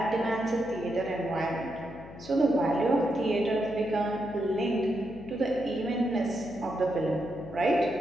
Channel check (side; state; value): left; noise; hum, 16 dB below the sound